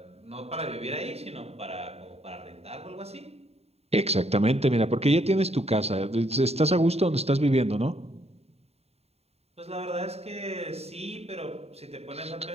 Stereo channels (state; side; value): late; left; 0.30 ms